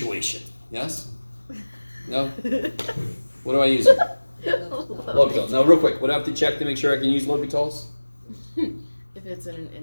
Yes? No? What do I use? L'Hopital. Now, real quick, what do I have to check to make sure I can use L'Hopitals? If it's in an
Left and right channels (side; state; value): both; inverted; correlation -1.00